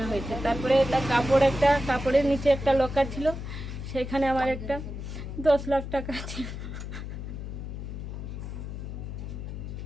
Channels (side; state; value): left; noise; hum, 7 dB below the sound